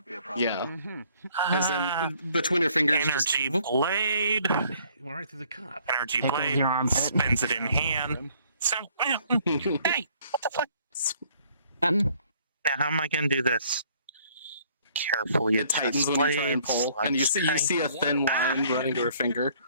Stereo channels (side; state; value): both; inverted; correlation -0.61